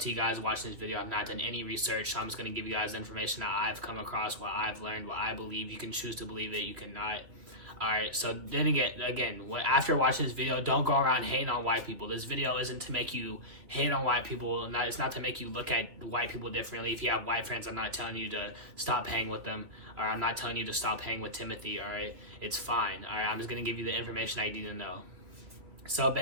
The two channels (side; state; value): left; late; 3.0 ms